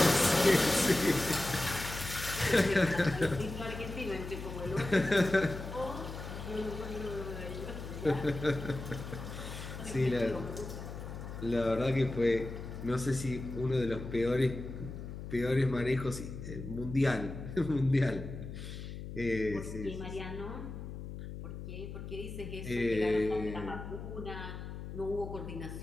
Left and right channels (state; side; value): noise; left; hum, 9 dB below the sound